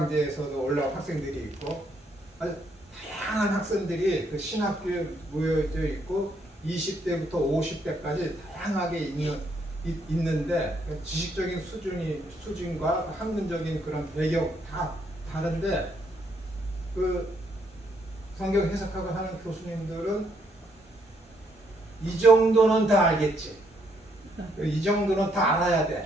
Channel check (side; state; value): both; normal; correlation 0.73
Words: 올라온 학생들이 있고, 아주 다양한 학생들이 그 신학교에 모여져 있고 20대부터 50대까지 다양하게 있는데 지식적인 수준과 학문적인 그런 배경 다 다른데, 그 성경 해석학을 하는 교수님들은 이 정도는 다 알겠지, 이 정도는 다 알아야